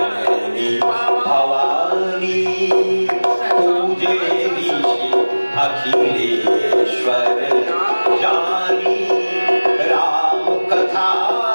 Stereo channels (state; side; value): inverted; both; correlation -1.00